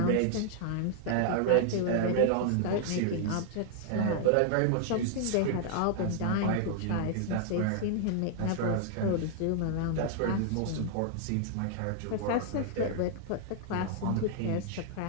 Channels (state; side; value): different; both; correlation -0.01